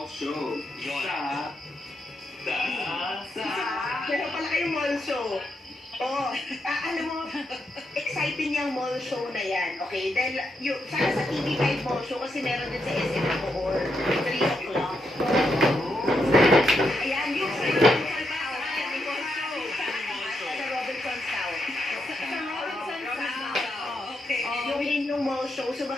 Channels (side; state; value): both; normal; correlation 0.82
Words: show. Meron pala kayong mall show. Alam mo, exciting yung mall show na yan, okay? Dahil sana sa TV5 mall show kasi meron din sa SM Bacoor, 3 o'clock. Ayan, yung sa Robinson's South. Yung mall show, so